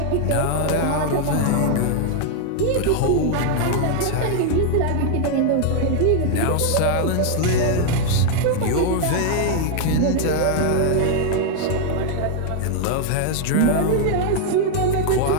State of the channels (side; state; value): both; different; correlation 0.00